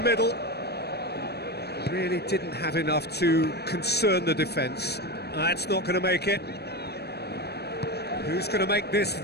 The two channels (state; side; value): late; right; 0.47 ms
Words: Really didn't have enough to concern the defence. That's not going to make it. Who's going to make this